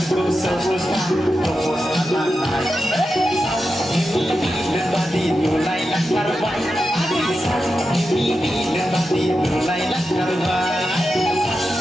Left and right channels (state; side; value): normal; both; correlation 0.89